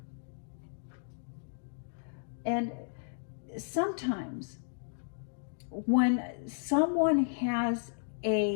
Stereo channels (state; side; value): silent; right; digital silence